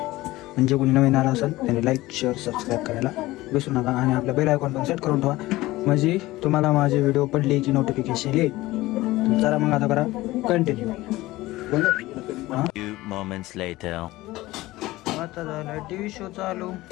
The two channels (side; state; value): right; quieter; 18.3 dB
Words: म्हणजे कोणी नवीन आला असेल त्यांनी लाईक शेअर सबस्क्राईब करायला विसरू नका. आणि आपलं बेल आयकॉन पण सेट करून ठेवा म्हणजे तुम्हाला माझे व्हिडिओ पडले की नोटिफिकेशन येईल. चला मग आता करा कंटिन्यू. Few moments later. आता झालं टीव्ही शो चालू.